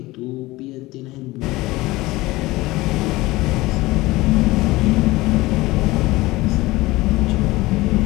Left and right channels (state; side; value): quieter; right; 19.9 dB